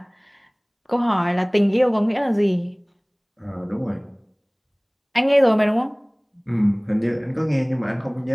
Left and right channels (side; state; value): both; identical; correlation 1.00